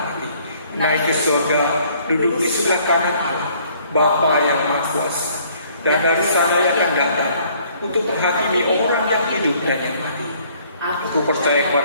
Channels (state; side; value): inverted; both; correlation -0.60